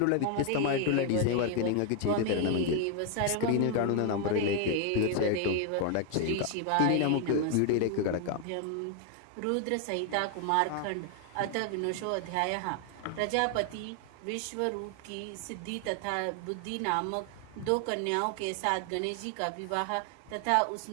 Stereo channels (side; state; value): both; different; correlation 0.00